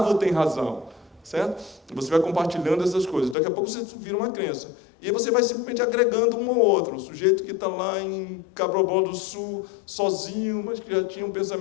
tem razão. Certo? Você vai compartilhando essas coisas. Daqui a pouco você vira uma crença. E aí você vai simplesmente agregando um ao outro. O sujeito que está lá em Cabrobó do Sul, sozinho, mas que já tinha um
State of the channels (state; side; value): drops out; right; at 3.4 s